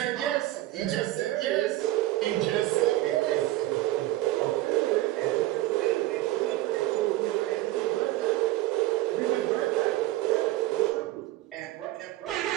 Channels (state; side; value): quieter; left; 16.6 dB